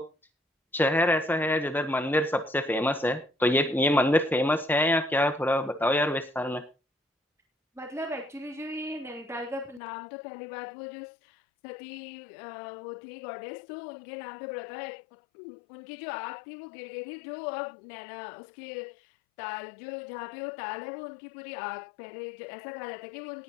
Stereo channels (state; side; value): drops out; right; at 9.8 s